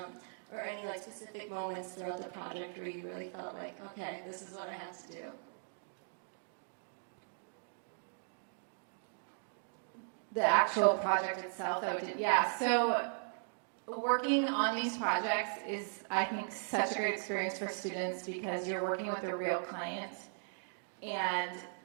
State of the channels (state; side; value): silent; left; digital silence